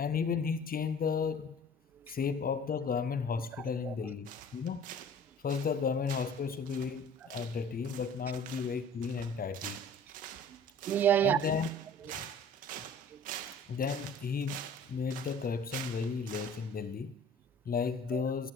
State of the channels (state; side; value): normal; both; correlation 0.47